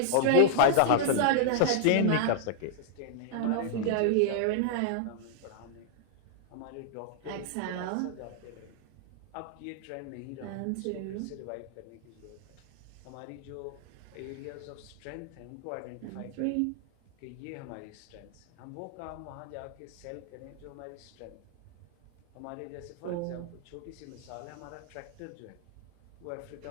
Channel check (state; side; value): different; both; correlation -0.01